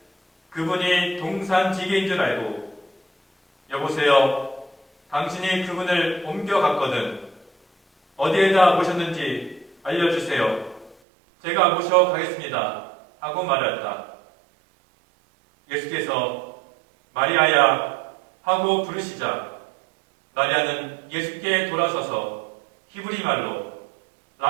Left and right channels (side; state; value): left; drops out; at 11.0 s